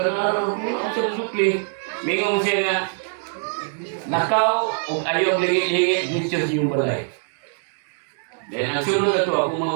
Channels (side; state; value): left; silent; 63 dB below the other